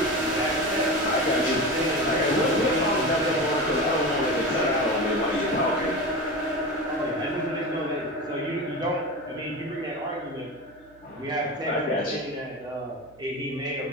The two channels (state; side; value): noise; right; hum, 28 dB below the sound